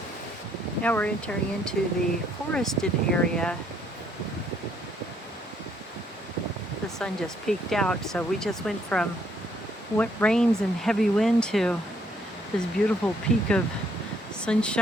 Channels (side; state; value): both; normal; correlation 0.69